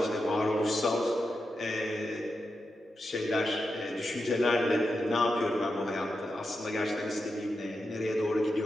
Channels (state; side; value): normal; both; correlation 0.88